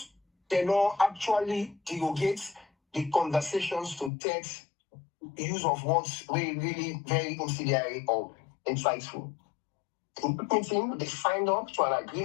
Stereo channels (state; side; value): drops out; right; at 4.1 s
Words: they not actually derogate the conversations to text use of words really very incendiary or insightful. In the meeting, they signed up to an